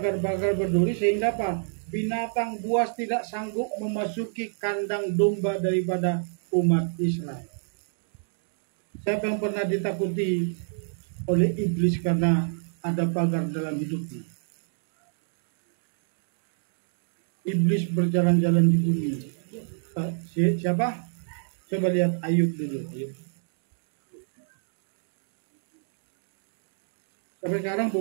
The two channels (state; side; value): silent; left; digital silence